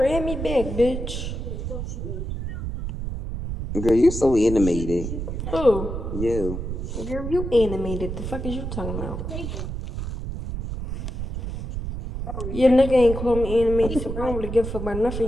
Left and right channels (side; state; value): right; noise; rumble, 5 dB below the sound